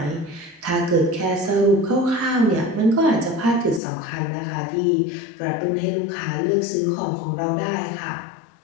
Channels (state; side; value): drops out; right; at 3.8 s